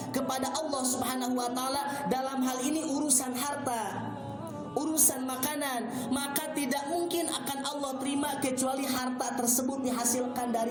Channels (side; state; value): both; identical; correlation 1.00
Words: kepada Allah Subhanahu wa taala, dalam hal ini urusan harta, urusan makanan, maka tidak mungkin akan Allah terima kecuali harta tersebut dihasilkan